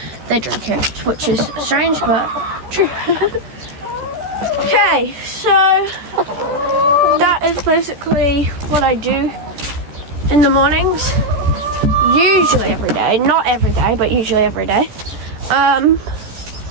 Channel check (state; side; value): late; left; 14 ms